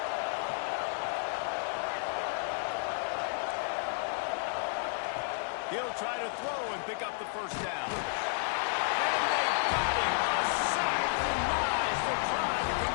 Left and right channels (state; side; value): silent; right; 56 dB below the other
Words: He'll try to throw and pick up the 1st down. And they got him. A sack denies the try to